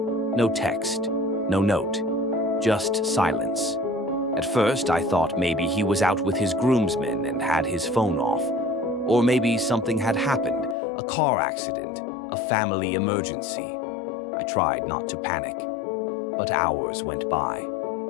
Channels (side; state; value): right; drops out; at 10.8 s